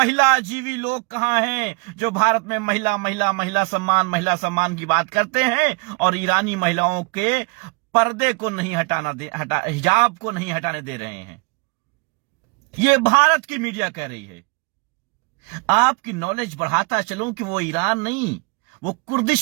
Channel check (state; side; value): quieter; left; 31.2 dB